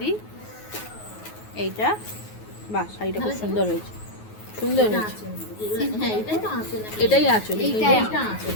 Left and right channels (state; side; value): late; right; 9.4 ms